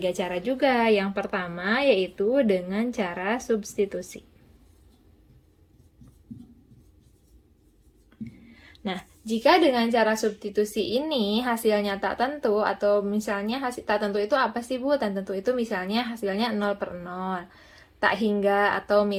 cara juga. Yang pertama, yaitu dengan cara substitusi. Nah, jika dengan cara substitusi ini hasilnya tak tentu, atau misalnya hasil tak tentu itu apa sih Bu? Tak tentu itu misalnya hasilnya 0/0. Tak hingga atau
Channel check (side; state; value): both; identical; correlation 1.00